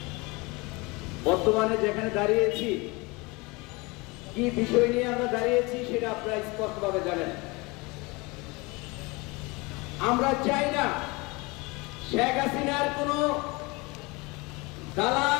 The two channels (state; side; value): quieter; right; 25.6 dB